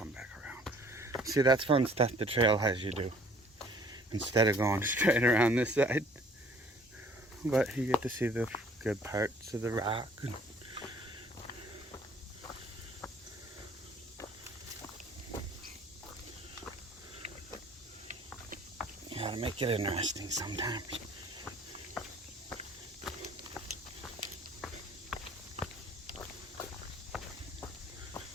back around. See, that's fun stuff the trail has you do. Instead of going straight around this side. But you get to see the good parts of the rock. You gotta make it interesting sometimes.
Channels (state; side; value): normal; both; correlation 0.55